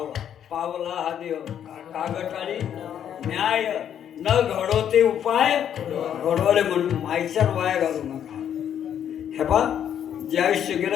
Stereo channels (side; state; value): right; quieter; 9.5 dB